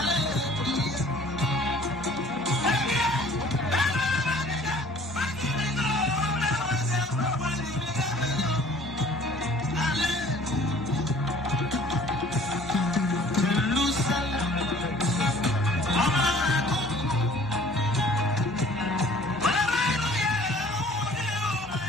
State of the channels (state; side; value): normal; both; correlation 0.52